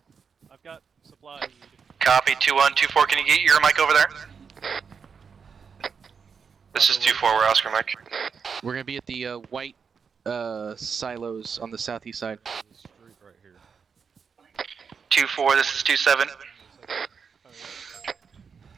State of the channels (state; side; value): quieter; left; 6.1 dB